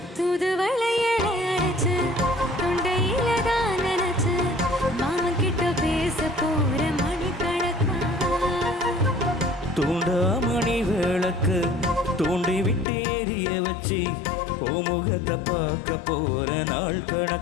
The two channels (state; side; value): drops out; right; at 12.9 s